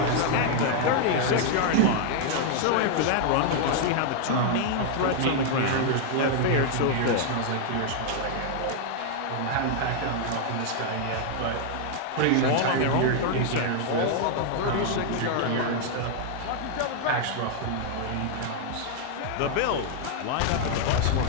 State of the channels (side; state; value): both; different; correlation 0.00